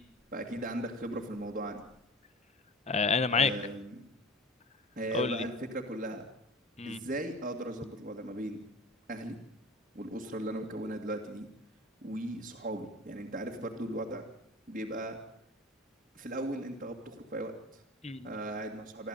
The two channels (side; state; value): both; normal; correlation 0.37